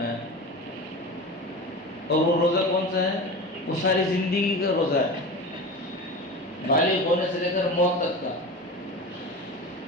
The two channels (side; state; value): both; normal; correlation 0.29